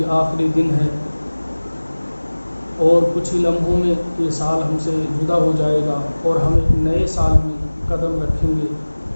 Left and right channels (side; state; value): both; inverted; correlation -1.00